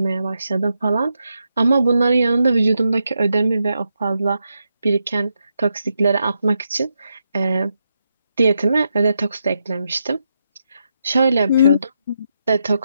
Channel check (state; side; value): inverted; both; correlation -0.84